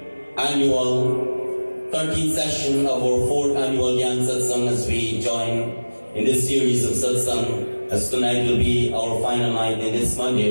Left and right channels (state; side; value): inverted; both; correlation -1.00